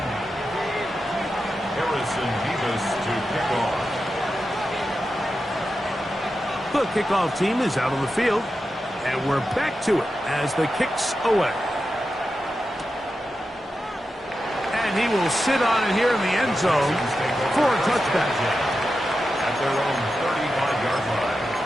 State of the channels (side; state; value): both; normal; correlation 0.90